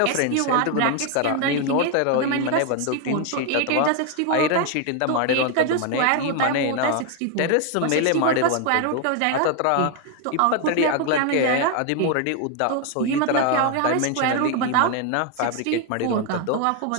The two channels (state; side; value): different; both; correlation 0.01